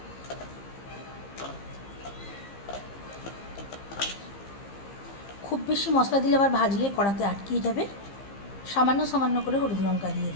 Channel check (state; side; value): late; right; 15 ms